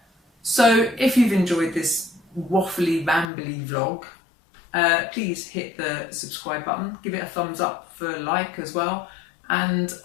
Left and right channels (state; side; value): drops out; right; at 3.3 s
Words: So if you've enjoyed this waffly, rambly vlog, please hit the subscribe button, give it a thumbs up for a like as well, and